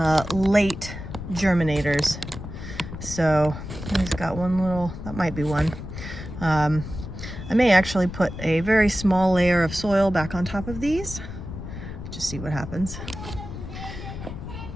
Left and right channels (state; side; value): noise; left; rumble, 10 dB below the sound